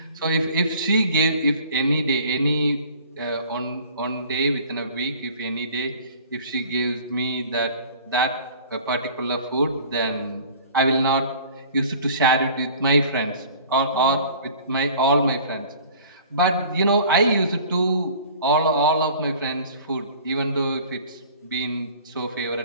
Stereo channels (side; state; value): both; inverted; correlation -0.47